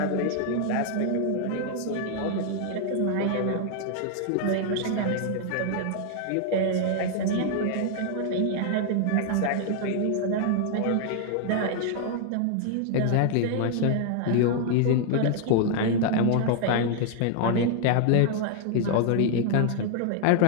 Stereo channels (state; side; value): different; both; correlation 0.00